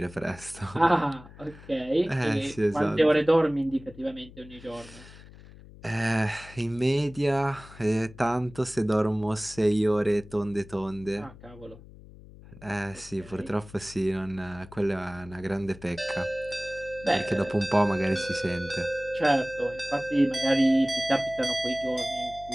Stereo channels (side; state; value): left; noise; hum, 19 dB below the sound